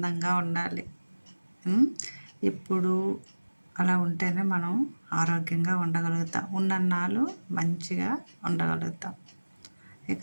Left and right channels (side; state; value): both; inverted; correlation -1.00